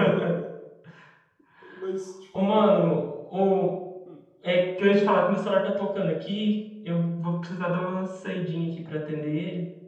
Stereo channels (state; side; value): identical; both; correlation 1.00